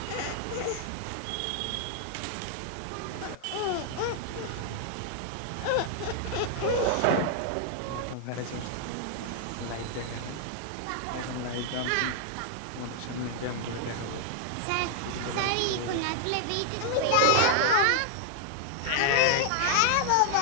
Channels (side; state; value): both; different; correlation 0.00